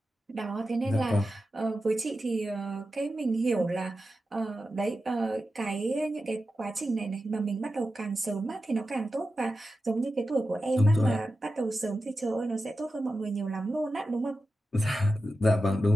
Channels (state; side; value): normal; both; correlation 0.92